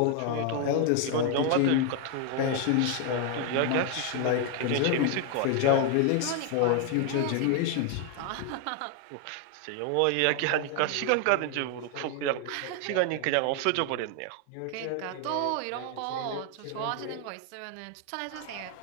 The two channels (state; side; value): different; both; correlation 0.01